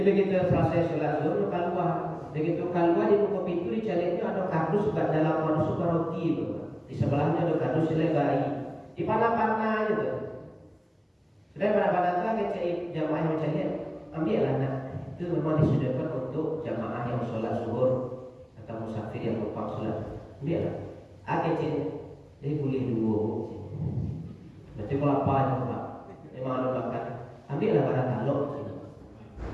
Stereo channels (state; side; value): identical; both; correlation 1.00